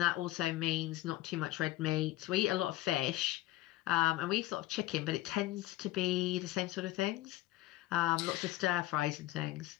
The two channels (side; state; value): right; quieter; 16.2 dB